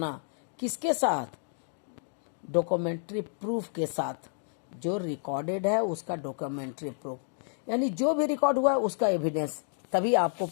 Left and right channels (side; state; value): right; silent; digital silence